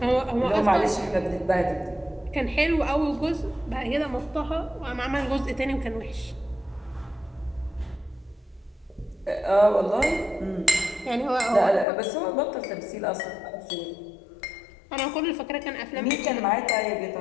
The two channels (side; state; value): right; drops out; at 11.9 s